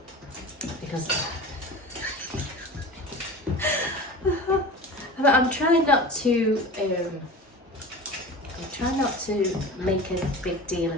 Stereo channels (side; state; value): both; normal; correlation 0.34